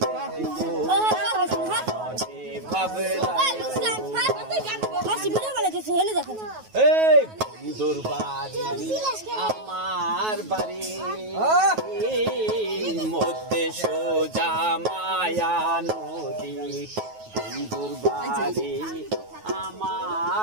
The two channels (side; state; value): left; late; 9.3 ms